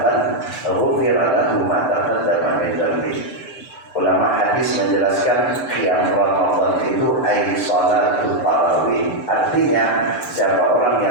ghufira lahu ma taqaddama min dhanbi. Ulama hadis menjelaskan qiyam Ramadan itu ai salatul tarawih. Artinya siapa orang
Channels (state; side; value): late; right; 6.8 ms